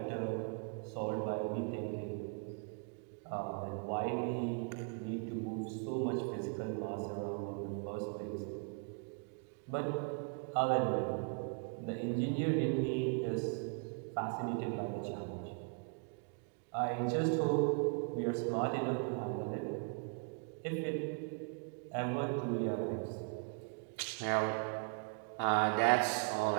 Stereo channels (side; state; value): left; quieter; 39.8 dB